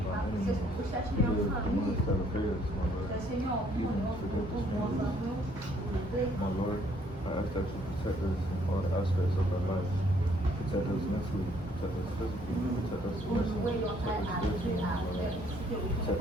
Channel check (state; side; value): normal; both; correlation 0.65